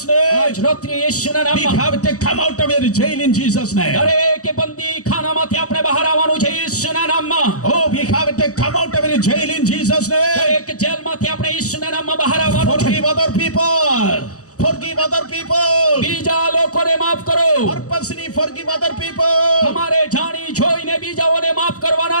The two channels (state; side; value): late; right; 0.66 ms